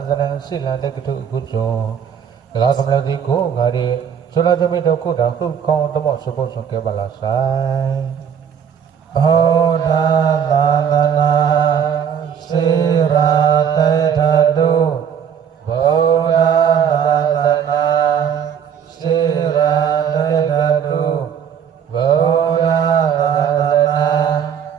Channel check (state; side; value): quieter; left; 8.1 dB